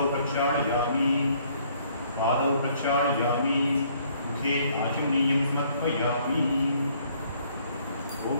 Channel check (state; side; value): inverted; both; correlation -0.63